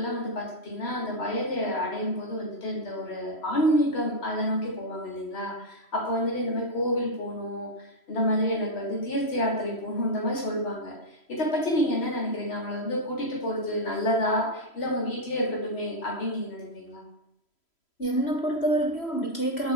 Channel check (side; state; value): right; late; 3.0 ms